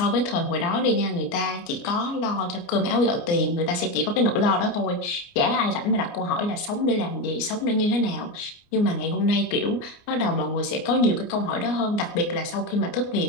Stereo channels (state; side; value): late; right; 29 ms